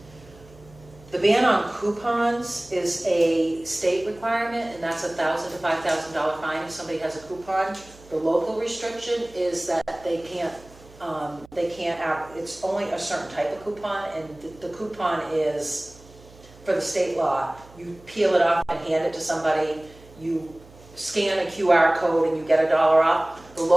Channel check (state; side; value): noise; right; hum, 23 dB below the sound